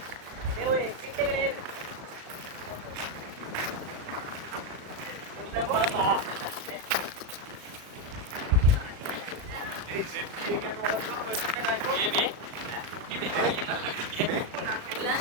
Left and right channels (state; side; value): late; left; 37 ms